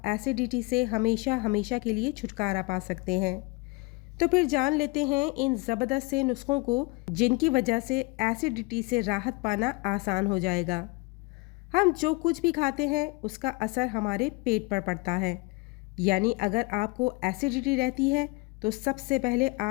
एसिडिटी से हमेशा हमेशा के लिए छुटकारा पा सकते हैं। तो फिर जान लेते हैं इन ज़बरदस्त से नुस्खों को जिनकी वजह से एसिडिटी से राहत पाना आसान हो जाएगा। हम जो कुछ भी खाते हैं उसका असर हमारे पेट पर पड़ता है। यानी अगर आपको एसिडिटी रहती है तो सबसे पहले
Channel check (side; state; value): right; quieter; 25.7 dB